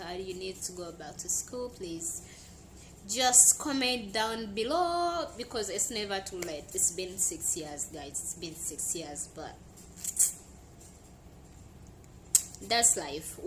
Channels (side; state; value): both; identical; correlation 1.00